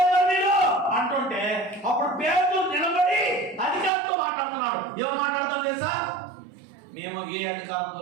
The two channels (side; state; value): left; drops out; at 3.9 s